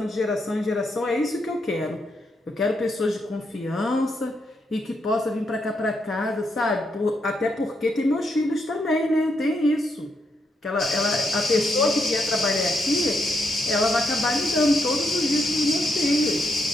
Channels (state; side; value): normal; both; correlation 0.79